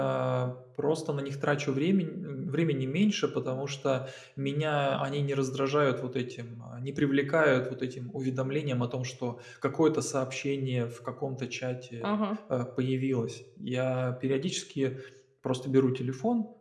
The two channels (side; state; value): both; identical; correlation 1.00